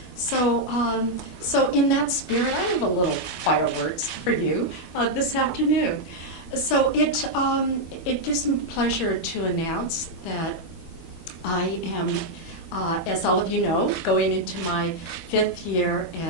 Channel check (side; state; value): right; late; 12 ms